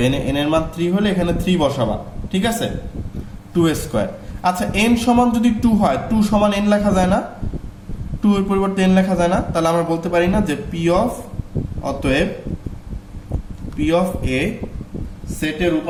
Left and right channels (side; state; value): both; identical; correlation 1.00